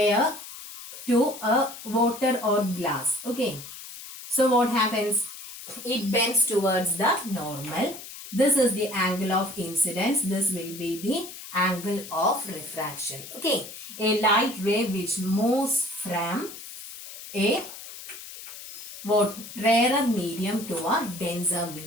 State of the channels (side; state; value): left; noise; hiss, 13 dB below the sound